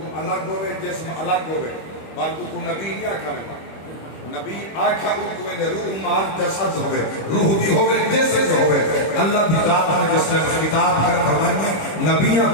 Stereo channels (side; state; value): right; late; 25 ms